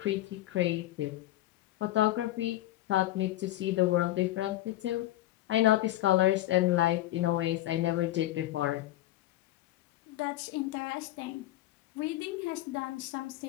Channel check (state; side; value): quieter; right; 15.3 dB